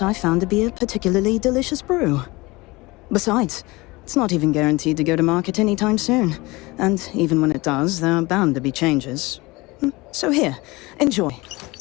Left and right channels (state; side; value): quieter; right; 22.6 dB